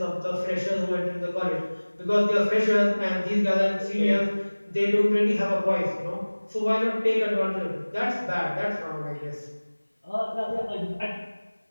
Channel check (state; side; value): inverted; both; correlation -1.00